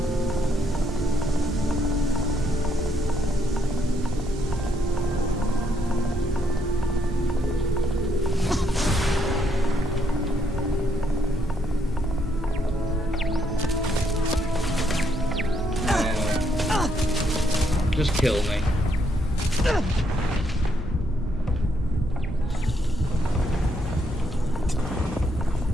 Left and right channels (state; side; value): normal; both; correlation 0.74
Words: just kill me.